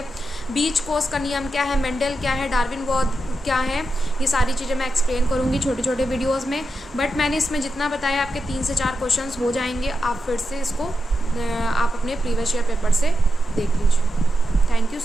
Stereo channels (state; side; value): normal; both; correlation 0.88